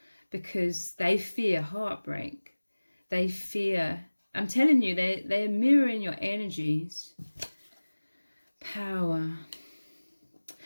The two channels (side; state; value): both; inverted; correlation -1.00